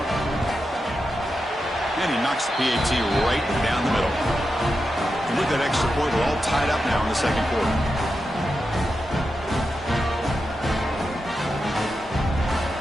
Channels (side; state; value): both; normal; correlation 0.89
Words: And he knocks the PAT right down the middle. And with that extra point, we're all tied up now in the second quarter.